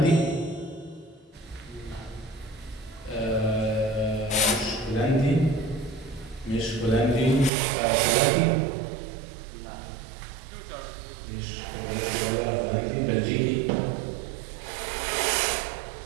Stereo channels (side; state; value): left; drops out; at 7.5 s